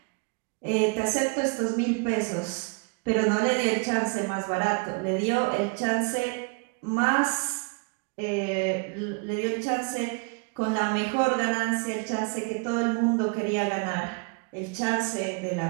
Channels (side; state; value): left; quieter; 33.6 dB